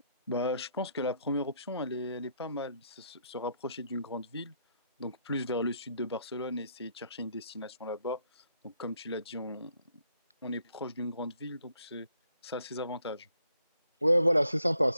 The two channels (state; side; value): inverted; both; correlation -0.72